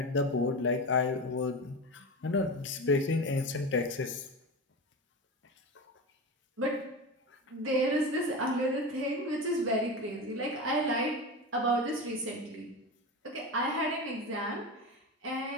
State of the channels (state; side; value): normal; both; correlation 0.24